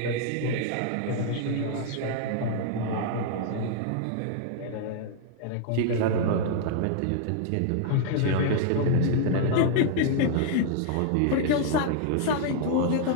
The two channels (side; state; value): both; different; correlation -0.01